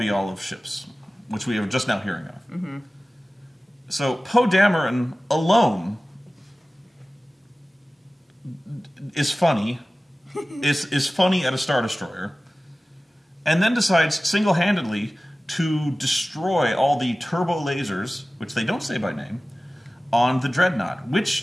of ships, which we are just now hearing of. So Poe Dameron alone is funny, is funny at a Star Destroyer, and then decides single-handedly to destroy all the turbo lasers, which they don't say by name, on the dreadnought,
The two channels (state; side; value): normal; both; correlation 0.97